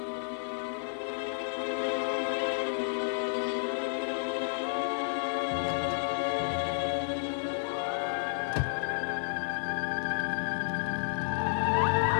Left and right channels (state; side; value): silent; right; digital silence